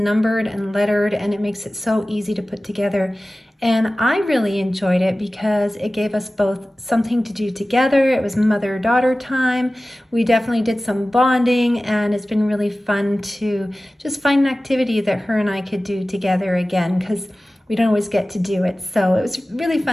and lettered, and it makes it so easy to put together. And I really enjoyed it because it gave us both something to do together. It was mother-daughter time. We definitely did some bonding, and it's been really fun to just find an activity that her and I could do together again, because we don't always get to do it. So it was really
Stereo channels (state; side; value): normal; both; correlation 0.96